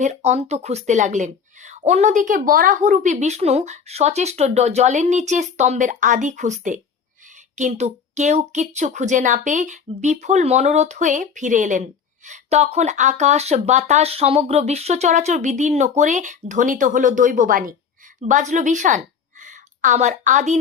অন্ত খুঁজতে লাগলেন। অন্যদিকে বরাহরূপী বিষ্ণু সচেষ্ট জলের নিচে স্তম্ভের আদি খুঁজতে, কিন্তু কেউ কিচ্ছু খুঁজে না পেয়ে বিফল মনোরথ হয়ে ফিরে এলেন। তখন আকাশ বাতাস সমগ্র বিশ্ব চরাচর বিদীর্ণ করে ধ্বনিত হলো দৈববাণী, বাজলো বিষাণ। আমার আদি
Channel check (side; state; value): right; quieter; 6.5 dB